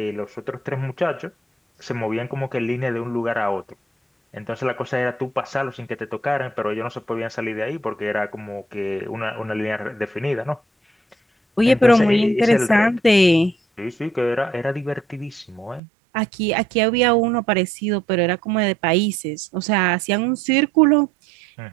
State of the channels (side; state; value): left; drops out; at 15.8 s